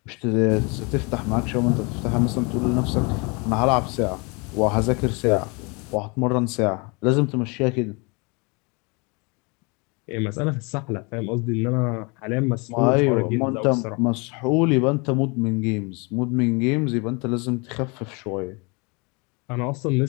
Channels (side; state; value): right; quieter; 30.3 dB